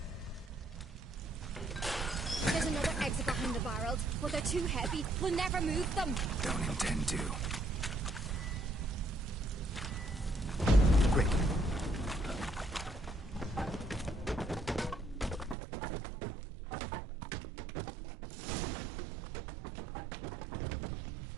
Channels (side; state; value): left; drops out; at 15.6 s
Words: There's another exit behind the barrels, but they're too heavy. We'll never move them. Don't intend to. Quick.